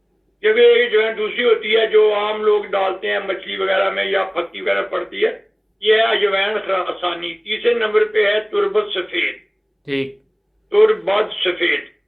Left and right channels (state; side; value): identical; both; correlation 1.00